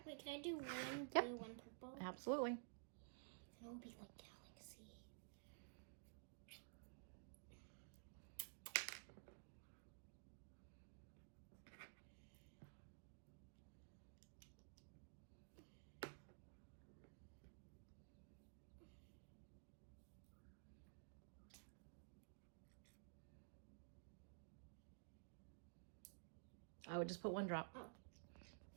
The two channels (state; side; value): silent; left; digital silence